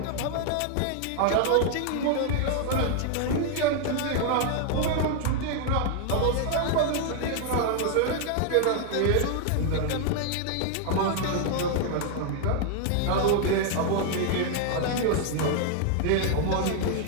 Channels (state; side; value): different; both; correlation 0.00